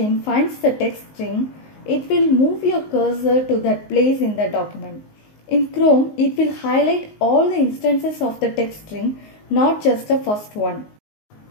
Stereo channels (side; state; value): right; late; 19 ms